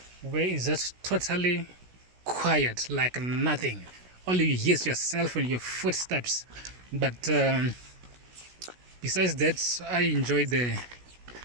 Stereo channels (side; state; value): left; late; 16 ms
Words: where it's just totally quiet, like nothing. All you hear is yourself and your footsteps. But besides that, I enjoy the